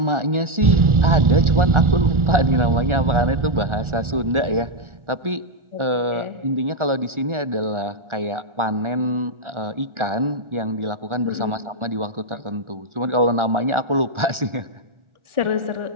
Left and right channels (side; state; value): left; late; 1.4 ms